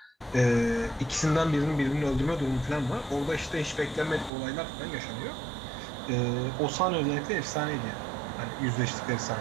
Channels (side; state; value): left; drops out; at 4.3 s